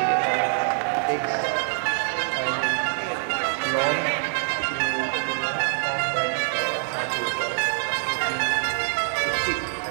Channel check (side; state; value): left; silent; digital silence